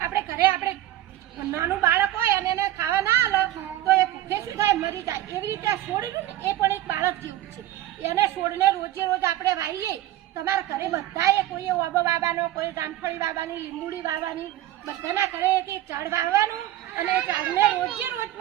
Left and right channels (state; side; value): quieter; left; 13.9 dB